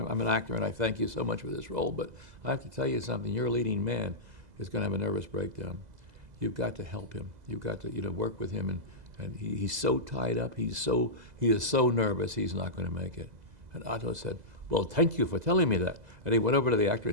an actor and I thank you so much for this role, but I have to tell you something, your leading man is going to have a nervous breakdown. You've got to help him. You've got to work with him, and he's so tied up, he is so nervous he's not going to make it. And Otto said, well, thank you for telling me that. And he went over to the actor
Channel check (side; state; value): left; late; 2.0 ms